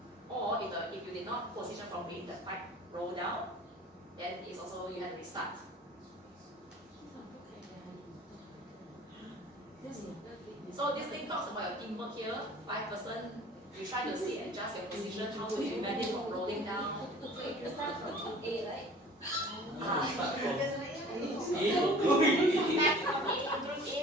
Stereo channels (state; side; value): normal; both; correlation 0.46